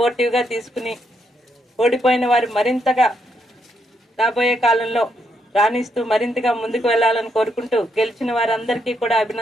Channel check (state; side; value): normal; both; correlation 0.77